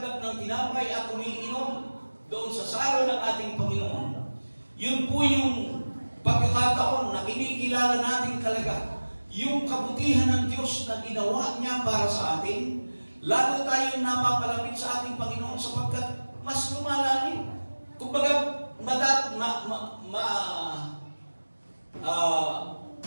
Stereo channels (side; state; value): both; inverted; correlation -1.00